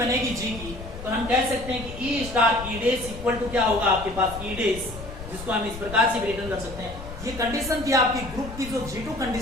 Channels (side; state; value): left; noise; rumble, 12 dB below the sound